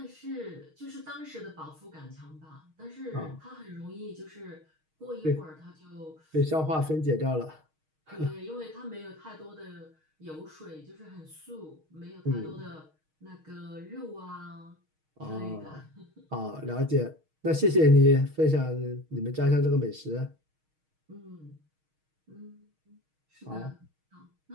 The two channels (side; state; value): left; late; 6.4 ms